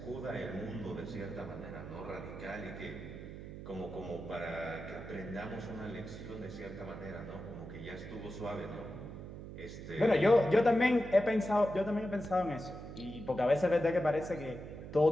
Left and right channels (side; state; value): right; noise; hum, 11 dB below the sound